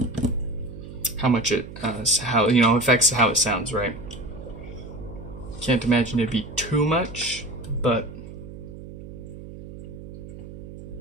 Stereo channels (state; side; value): noise; right; hum, 13 dB below the sound